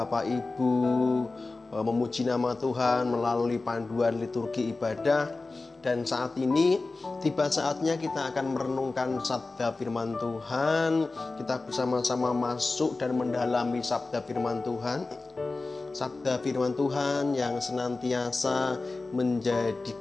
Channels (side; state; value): right; quieter; 3.5 dB